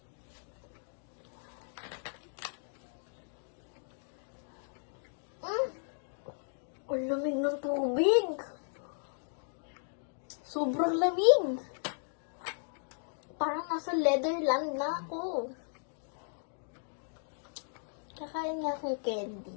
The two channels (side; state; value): right; silent; digital silence